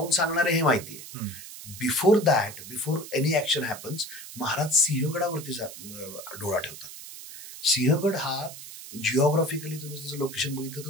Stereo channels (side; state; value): right; noise; hiss, 13 dB below the sound